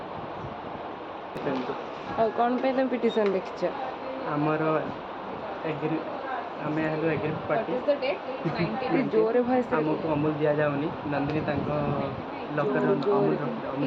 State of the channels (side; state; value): both; identical; correlation 1.00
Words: ଆଉ କ'ଣ ପାଇଁ ତମେ ପିଟିସନ୍ ଲେଖିଛ? ଆମର ଆମେ ହେଲୁ ଏଗ୍ରି ପାର୍ଟି। ଜୋରରେ ଭଏସ୍ ଆମକୁ ଅମୁଲ ଦିଆଯାଉନି, ନନ୍ଦିନୀ ତାଙ୍କ ଲକର୍